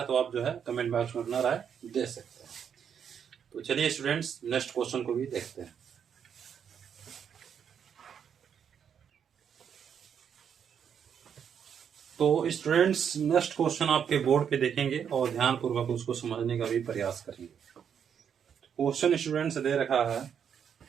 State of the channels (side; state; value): left; quieter; 7.9 dB